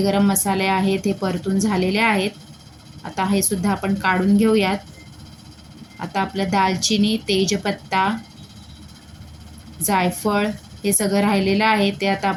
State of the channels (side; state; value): both; identical; correlation 1.00